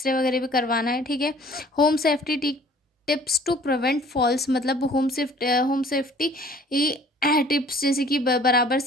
वगैरह भी करवाना है। ठीक है, home safety tips to prevent falls, मतलब होम सेफ्टी टिप्स, जैसे कि बराबर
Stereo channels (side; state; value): both; normal; correlation 0.53